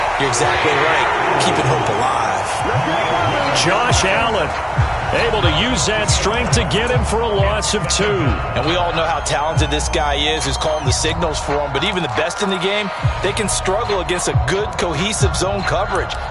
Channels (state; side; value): identical; both; correlation 1.00